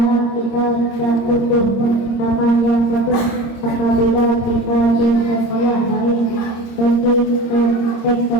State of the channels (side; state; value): right; late; 26 ms